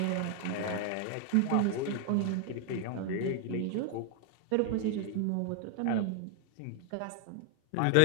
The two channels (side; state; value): both; different; correlation 0.00